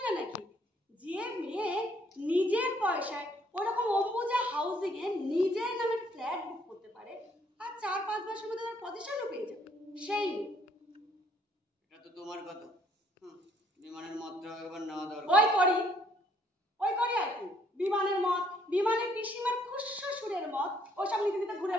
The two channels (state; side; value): normal; both; correlation 0.65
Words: নাকি? যে মেয়ে নিজের পয়সায় ওরকম অম্বুজা হাউসিং এ নিজের নামে ফ্ল্যাট বুক করতে পারে আর 4-5 মাসের মধ্যে তার পজিশনও পেয়ে যাবে, সেই এটা তো তোমার কথা। বিমানের মতটা একবার নেওয়া দরকার। ওই করি আর কি। বিমানের মত, বিমানের পিসিমার খুশশুরের মত, ওসব নিতে নিতে ঘুরে